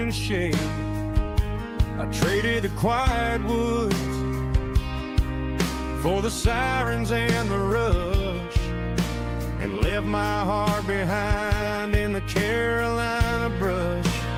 shade. I traded the quiet woods for the sirens and the rush, and left my heart behind in the Carolina brush.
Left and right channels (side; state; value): both; identical; correlation 1.00